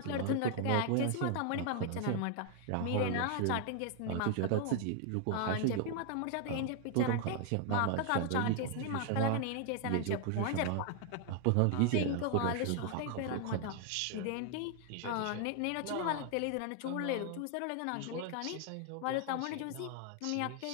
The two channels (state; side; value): different; both; correlation 0.00